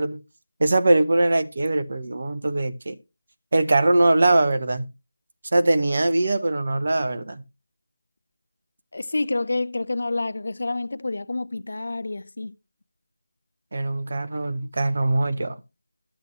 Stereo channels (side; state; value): both; inverted; correlation -0.96